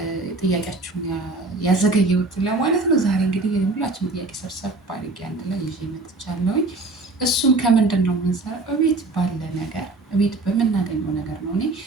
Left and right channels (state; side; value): quieter; left; 3.3 dB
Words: ጥያቄያችሁን ያዘገየሁት ለማለት ነው። ዛሬ እንግዲህ ሁላችንም ጥያቄ ሰብሰብ አድርጌ አንድ ላይ ይዤ መጥቻለሁኝ። እሱም ከምንድን ነው የምንሰራው? እቤት ባለ ነገር፣ እቤት በምናገኘው ነገር ነው። እኔ